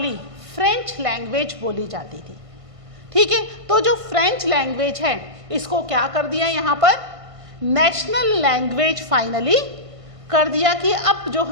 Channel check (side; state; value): left; late; 1.5 ms